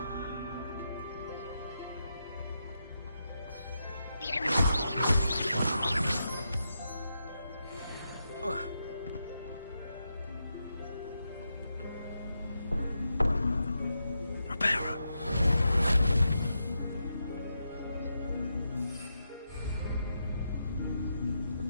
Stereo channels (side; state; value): both; inverted; correlation -0.85